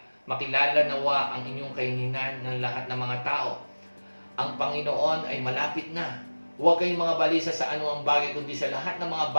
nawa ang inyong kaininan ng lahat ng mga tao. Ang Panginoon ay malapit na. Huwag kayong mga balisa sa anumang bagay, kundi sa lahat ng mga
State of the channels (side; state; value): both; inverted; correlation -1.00